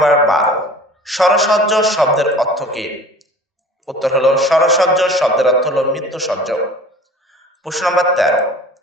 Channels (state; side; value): normal; both; correlation 0.43